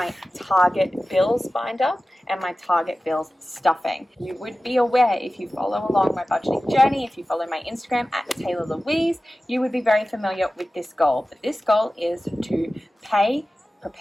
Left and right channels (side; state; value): both; normal; correlation 0.96